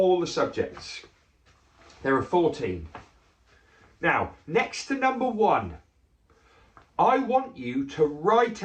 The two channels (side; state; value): both; identical; correlation 1.00